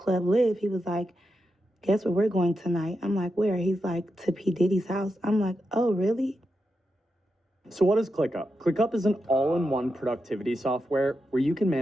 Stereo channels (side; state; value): both; normal; correlation 0.87